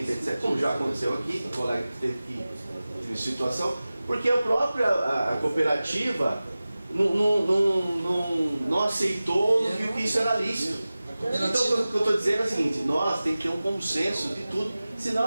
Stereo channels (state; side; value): inverted; both; correlation -0.97